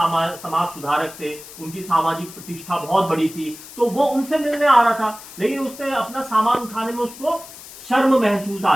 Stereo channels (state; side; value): noise; left; hiss, 16 dB below the sound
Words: सुधारक थे, उनकी सामाजिक प्रतिष्ठा बहुत बड़ी थी। तो वो उनसे मिलने आ रहा था, लेकिन उसने अपना सामान उठाने में उसको शर्म महसूस आ